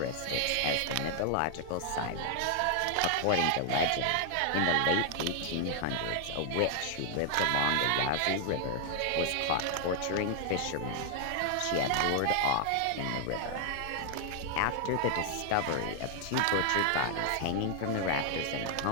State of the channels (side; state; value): both; different; correlation 0.00